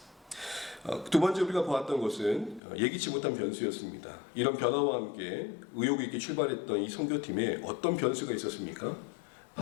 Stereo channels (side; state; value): right; drops out; at 2.6 s